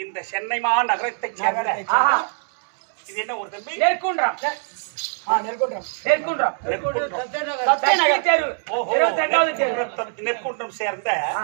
சென்னை மாநகரத்தை சேர்ந்த ஆஹா இது என்ன ஒரு தம்பி? நெற்குன்றம் நெற்குன்றம். நெற்குன்றம் நெற்குன்றம். சக்தி தெரு ஓஹோ, 22வது தெரு நெற்குன்றம் சேர்ந்த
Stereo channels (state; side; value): silent; left; 64 dB below the other